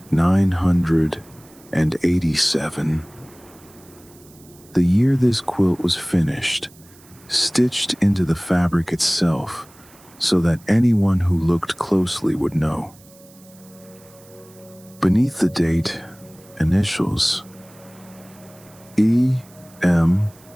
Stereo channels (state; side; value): noise; right; hiss, 26 dB below the sound